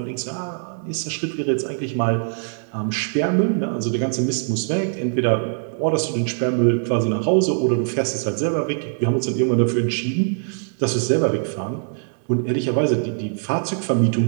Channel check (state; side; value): silent; left; 64 dB below the other